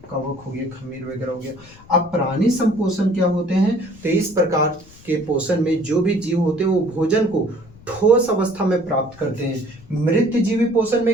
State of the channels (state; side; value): noise; left; rumble, 23 dB below the sound